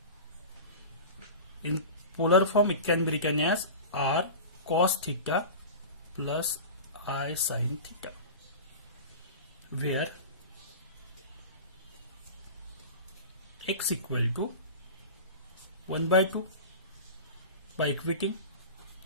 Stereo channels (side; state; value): both; inverted; correlation -0.32